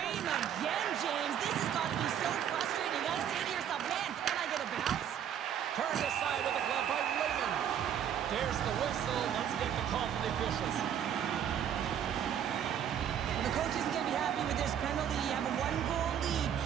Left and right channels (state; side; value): quieter; left; 9.2 dB